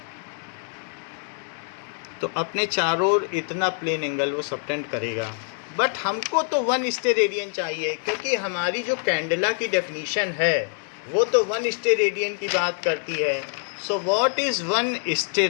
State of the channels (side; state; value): right; silent; 57 dB below the other